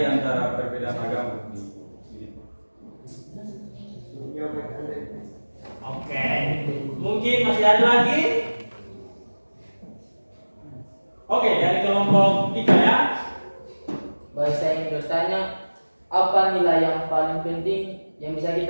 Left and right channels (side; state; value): both; inverted; correlation -1.00